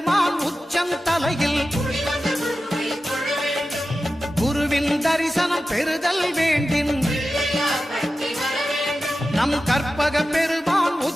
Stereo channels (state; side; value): normal; both; correlation 0.93